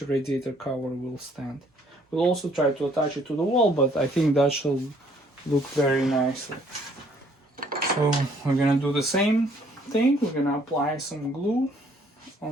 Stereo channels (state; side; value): normal; both; correlation 0.62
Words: radiator cover will stand. We'll also try to attach it to the wall, but I think that shall look very nicely. So we're gonna do the same thing. We're gonna apply some glue